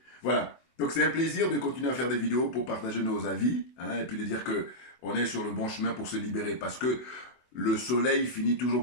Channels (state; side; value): late; right; 24 ms